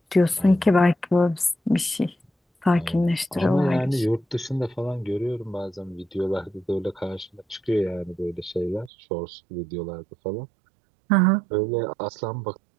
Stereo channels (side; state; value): left; drops out; at 8.9 s